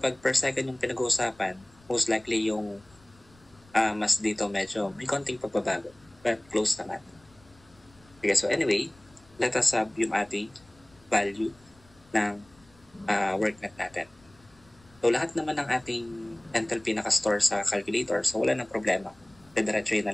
per second yung pinag-uusapan, most likely yung mas dito medyo may konting pagbabago. But close naman. Okay, so anyway, let us have yung ating value ng work net natin. So, lahat naman ng ating enthalpy nakastore sa calculator. So, wala nang problema. Didiretsuhin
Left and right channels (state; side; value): noise; left; rumble, 29 dB below the sound